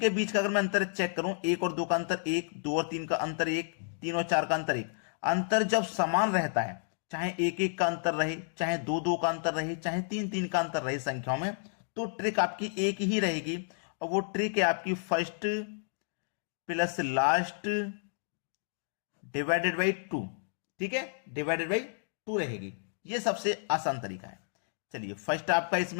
बीच का अगर मैं अंतर चेक करूं, 1 और 2 का अंतर 1, 2 और 3 का अंतर 1, 3 और 4 का अंतर 1। अंतर जब समान रहता है, चाहे 1 1 का अंतर रहे, चाहे 2 2 का अंतर रहे, चाहे 3 3 का अंतर रहे संख्याओं में, तो ट्रिक आपकी एक ही रहेगी। और वो ट्रिक है आपकी first plus last divided by 2, ठीक है, डिवाइडेड बाई 2 रहेगी। ये सबसे आसान तरीका है। चलिए, फर्स्ट आपका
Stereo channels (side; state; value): right; silent; digital silence